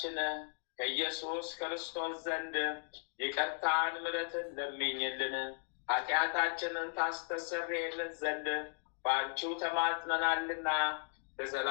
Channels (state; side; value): silent; right; digital silence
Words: ከኢየሱስ ክርስቶስ ዘንድ ይቅርታን ምሕረትን ለምኝልን፣ ኃጢአታችንን ታስተሰርይልን ዘንድ በአንቺው ተማጽነናልና